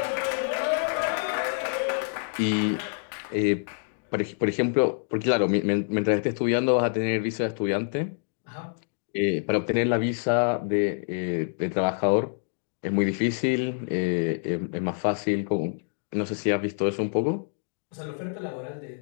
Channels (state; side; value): silent; right; digital silence